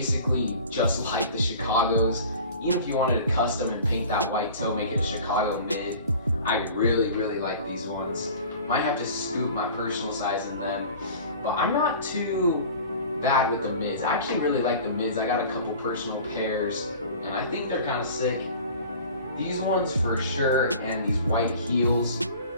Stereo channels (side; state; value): both; inverted; correlation -0.42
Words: just like the Chicagos. Even if you wanted to custom and paint that white toe, make it a Chicago mid, I really, really like these ones. Might have to scoop my personal size in them, but I'm not too bad with the mids. I actually really like the mids. I got a couple personal pairs, and I think they're kind of sick. These ones for sure, and these white heels,